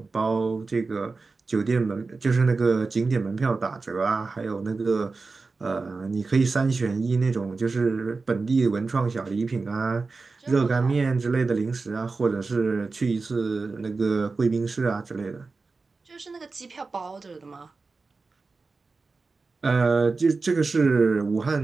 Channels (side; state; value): left; quieter; 4.0 dB